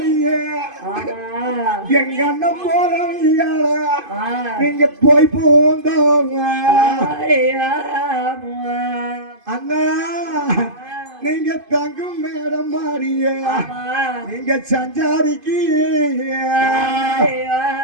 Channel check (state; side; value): late; left; 2.5 ms